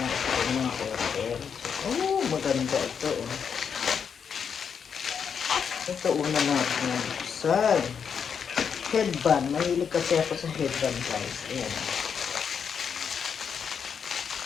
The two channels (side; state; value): right; quieter; 6.9 dB